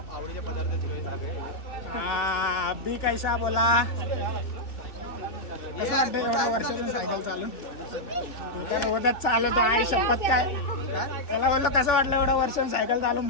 आवडीचे पदार्थ अभी कैसा बोला. कसं वाटतं एवढ्या वर्षातून सायकल चालून? रोजच चालवतो आई शपथ. काय त्याला बोललो कसं वाटलं एवढ्या वर्षातून सायकल चालून?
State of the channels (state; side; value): late; right; 2.7 ms